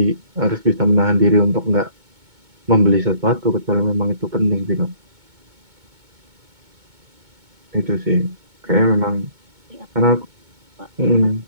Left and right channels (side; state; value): left; late; 2.2 ms